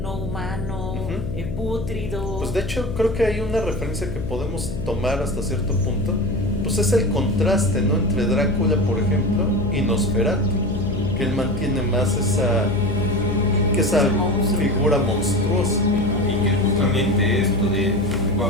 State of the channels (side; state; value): left; noise; hum, 6 dB below the sound